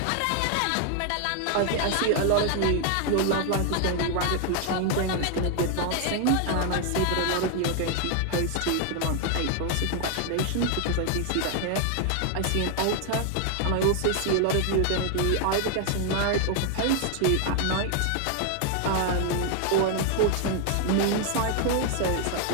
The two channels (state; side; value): different; both; correlation 0.00